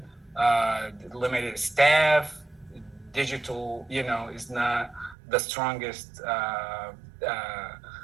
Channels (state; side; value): drops out; left; at 5.2 s